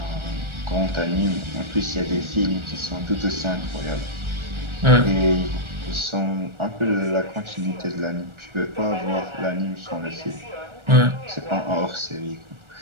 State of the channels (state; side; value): late; left; 1.4 ms